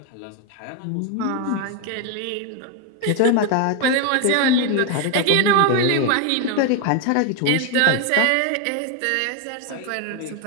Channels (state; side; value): different; both; correlation 0.01